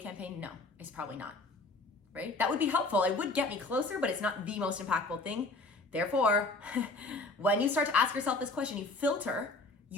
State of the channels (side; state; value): right; quieter; 3.2 dB